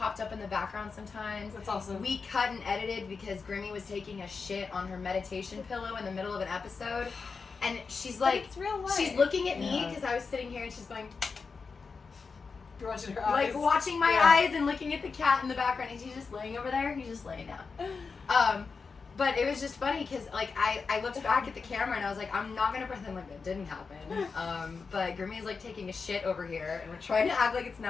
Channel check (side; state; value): right; quieter; 4.9 dB